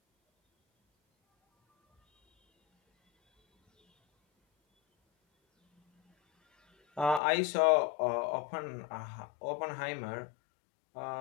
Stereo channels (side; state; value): right; drops out; at 7.2 s